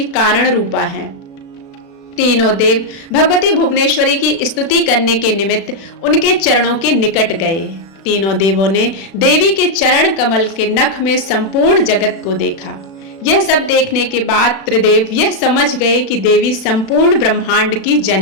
कारण रूपा है। तीनों देव भगवती भुवनेश्वरी की स्तुति करने के निमित्त उनके चरणों के निकट गए। तीनों देवों ने देवी के चरण कमल के नख में संपूर्ण जगत को देखा। यह सब देखने के बाद त्रिदेव यह समझ गए कि देवी संपूर्ण ब्रह्मांड की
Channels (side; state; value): right; late; 36 ms